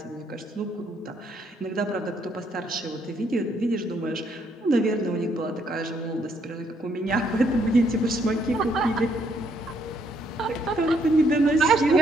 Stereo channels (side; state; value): both; normal; correlation 0.71